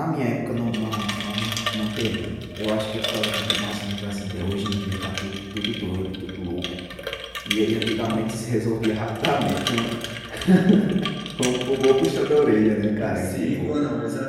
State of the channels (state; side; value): identical; both; correlation 1.00